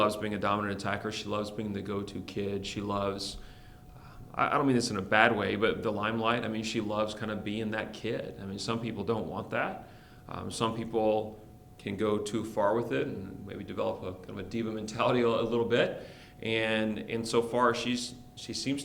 being a dominant attacker. She loves being the go-to kid. She loves, I don't mean this in a bad way, but the limelight. I mean, she loves kind of being that kid. I mean, some people don't want that. Some people can go too far with it and maybe develop a kind of a diva mentality a little bit. And so far, she seems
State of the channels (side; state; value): both; identical; correlation 1.00